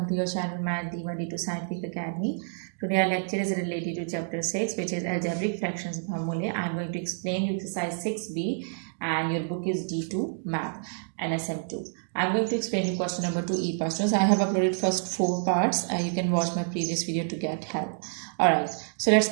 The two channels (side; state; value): left; silent; digital silence